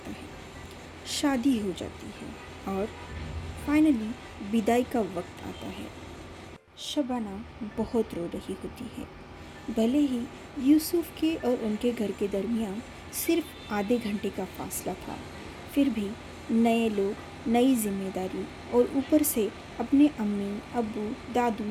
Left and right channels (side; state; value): both; identical; correlation 1.00